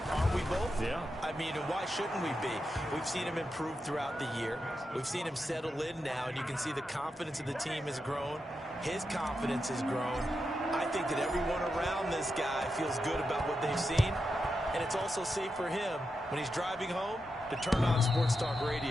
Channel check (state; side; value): normal; both; correlation 0.87